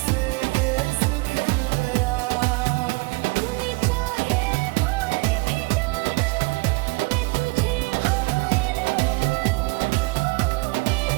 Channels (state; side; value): quieter; left; 26.6 dB